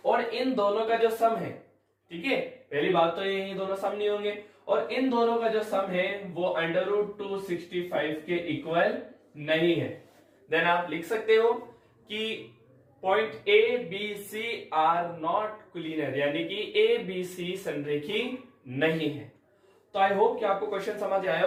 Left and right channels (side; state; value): both; identical; correlation 1.00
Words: और इन दोनों का जो सम है, ठीक है, पहली बात तो ये दोनों सम नहीं होंगे, और इन दोनों का जो सम है वो √265 के इक्वल नहीं है। देन आप लिख सकते हो कि point A B C are not collinear, यानी कि ए बी सी संरेखी नहीं है। तो आई होप कि आपको क्वेश्चन समझ आया